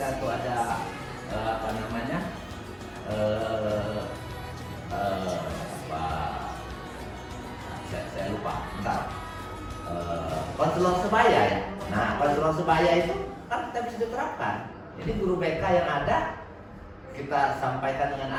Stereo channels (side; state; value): both; identical; correlation 1.00